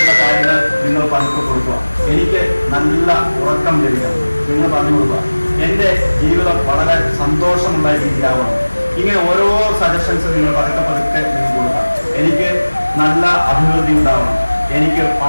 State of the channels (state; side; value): inverted; both; correlation -1.00